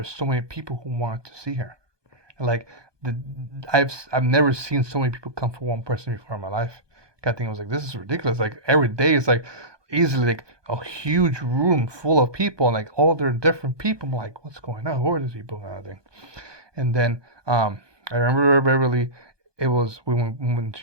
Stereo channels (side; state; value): left; late; 1.2 ms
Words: were so many people who wanted to see her. And like the I've never seen so many people come for one person before in my life. I think I was like, this is ridiculous. Like every day is like easily like a huge room full of people and like all their different people. I'm like, what's going on? Who are these people kind of thing? And then I remember Beverly. It was when